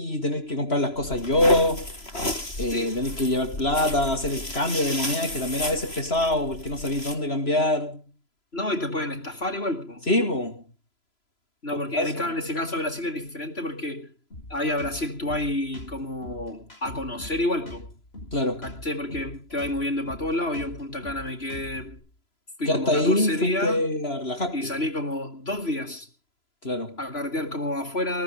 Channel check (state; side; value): late; right; 3.0 ms